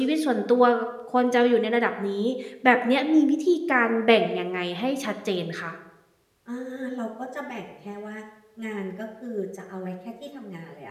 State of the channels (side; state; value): both; identical; correlation 1.00